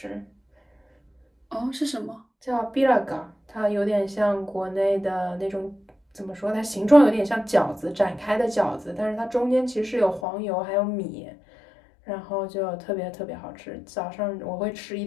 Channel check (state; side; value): drops out; right; at 10.2 s